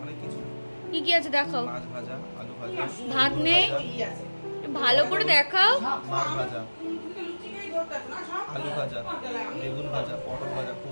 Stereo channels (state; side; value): inverted; both; correlation -1.00